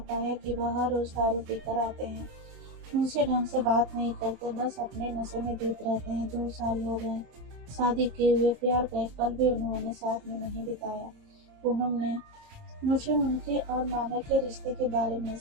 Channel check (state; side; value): late; left; 27 ms